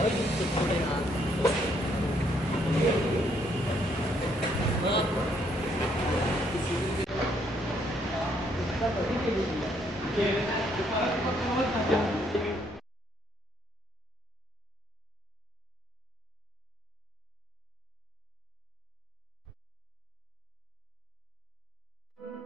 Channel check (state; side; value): normal; both; correlation 0.70